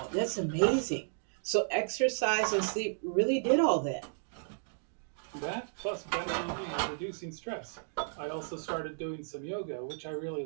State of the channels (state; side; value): silent; left; digital silence